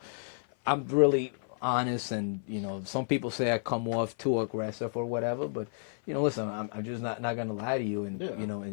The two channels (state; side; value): silent; right; 57 dB below the other